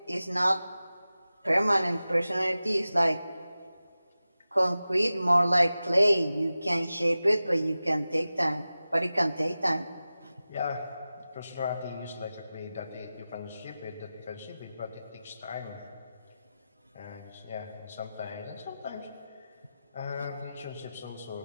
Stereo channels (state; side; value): inverted; both; correlation -0.95